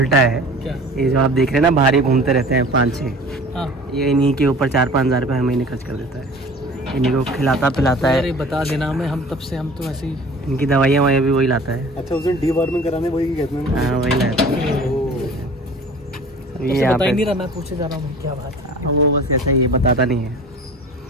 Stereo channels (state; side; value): normal; both; correlation 0.44